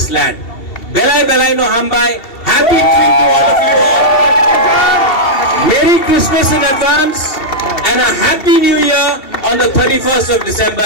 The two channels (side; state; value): right; late; 2.7 ms